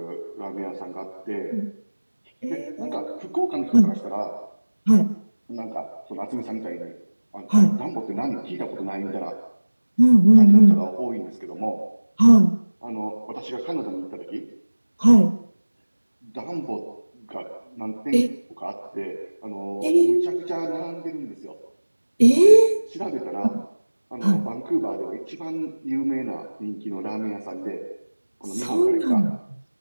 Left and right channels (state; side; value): inverted; both; correlation -1.00